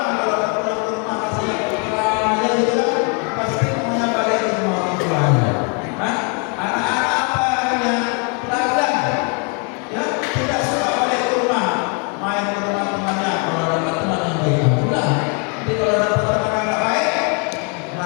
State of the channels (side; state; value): right; quieter; 36.8 dB